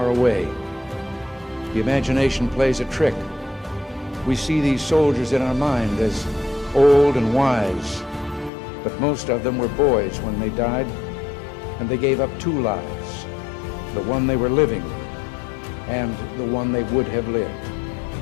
away. The imagination plays a trick. We see these soldiers in our mind as old and wise, but most of them were boys when they died, and they gave up two lives, the one they were living and the one they would have lived.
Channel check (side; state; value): right; drops out; at 8.5 s